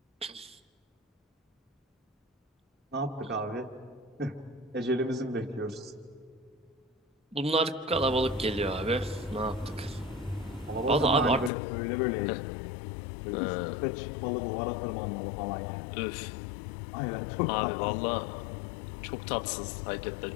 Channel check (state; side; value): drops out; right; at 11.5 s